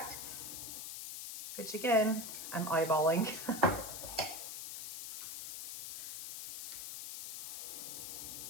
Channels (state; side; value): noise; left; hiss, 7 dB below the sound